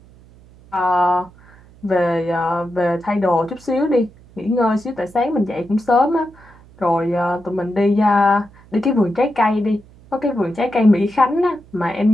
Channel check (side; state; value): right; noise; hum, 25 dB below the sound